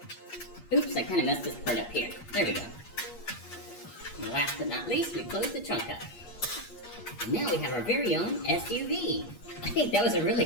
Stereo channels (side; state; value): right; late; 8.4 ms